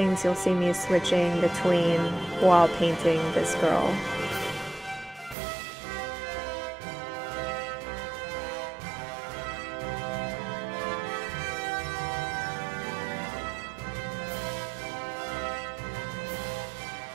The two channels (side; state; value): left; drops out; at 5.4 s